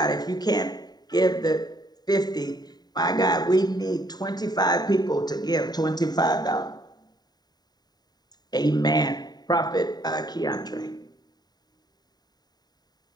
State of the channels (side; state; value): right; late; 0.20 ms